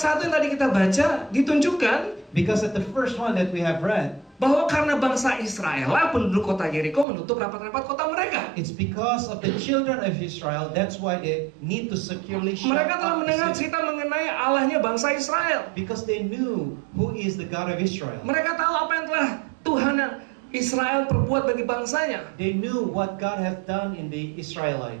yang tadi kita baca ditunjukkan Because at the first one that we have read, bahwa karena bangsa Israel lah penduduk kota Yeriko menutup rapat-rapat kota mereka. it's because of the children of Israel. That's why they need to securely shut Mereka telah up mendengar the city. cerita mengenai Allahnya bangsa Israel. Because they knew who is the God of Israel. Mereka tahu apa yang telah Tuhan Israel perbuat bagi bangsanya. They knew what God has done in the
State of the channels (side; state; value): left; drops out; at 7.1 s